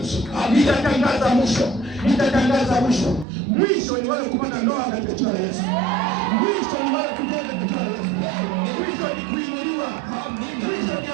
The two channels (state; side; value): drops out; left; at 3.2 s